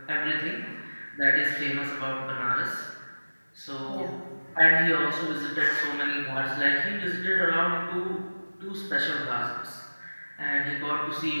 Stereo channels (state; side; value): inverted; both; correlation -1.00